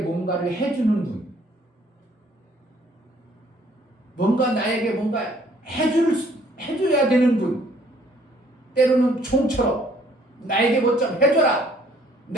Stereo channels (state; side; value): normal; both; correlation 0.61